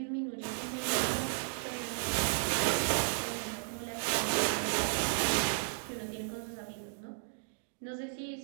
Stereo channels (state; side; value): silent; left; digital silence